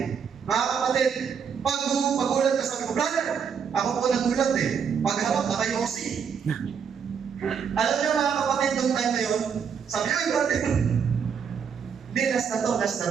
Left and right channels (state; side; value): quieter; left; 6.9 dB